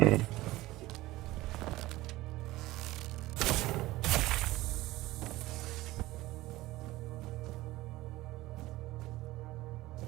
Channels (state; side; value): quieter; left; 18.0 dB